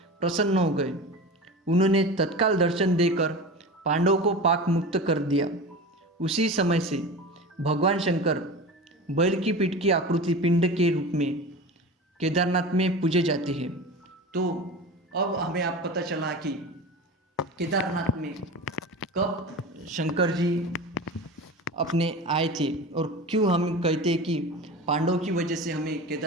प्रसन्न हो गए। उन्होंने तत्काल दर्शन देकर पांडवों को पाक मुक्त कर दिया। उसी समय से भगवान शंकर बैल की पीठ की आकृति पिंड के रूप में केदारनाथ में पूजे जाते हैं। तो अब हमें आप पता चला कि केदारनाथ में कब शंकर जी अपने आए थे और क्यों हम कहते हैं कि पांडवों की वजह से हमें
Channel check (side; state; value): both; normal; correlation 0.31